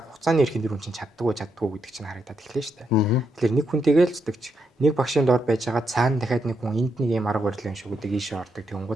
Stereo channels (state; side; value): normal; both; correlation 0.80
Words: хугацааны эрхэнд тэр хүн чинь чаддгүй гэдэг чинь харагдаад эхлэв шүү дээ. Тэгэхээр нэг хүнтэйгээ л зүтгэж, нэг багшийн доор байж байгаа цаана дахиад нэг хүн энд нэг юм арга барил юм шиг үдэг ийшээ ордог.